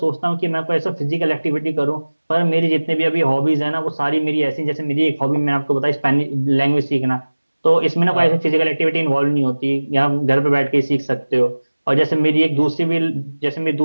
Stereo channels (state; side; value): inverted; both; correlation -1.00